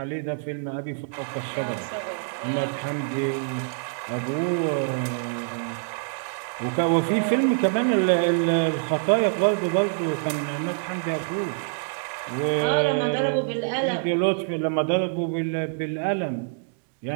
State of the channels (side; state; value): left; silent; digital silence